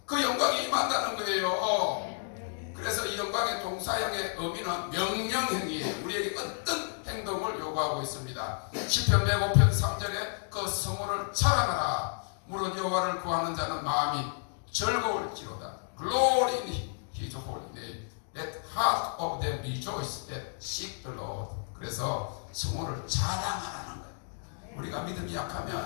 그 영광이 임한다는 거예요. 그래서 이 영광의 동사형의 의미는 명령행위에 우리에게 어떤 행동을 요구하고 있습니다. 시편 105편 3절에 그 성호를 자랑하라. 무릇 여호와를 구하는 자는 마음이 즐거울지로다. Glory in His holy name. Let heart of them rejoice that seek the Lord. 그래서 성호를 자랑하라는 거예요. 우리가 믿음이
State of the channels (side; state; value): right; silent; digital silence